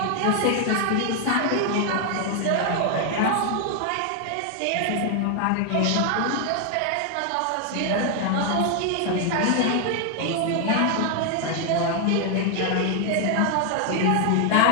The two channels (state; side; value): different; both; correlation 0.00